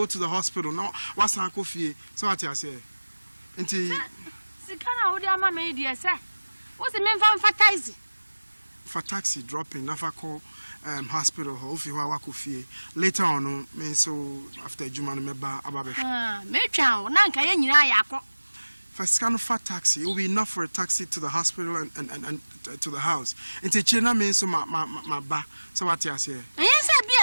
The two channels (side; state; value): both; inverted; correlation -1.00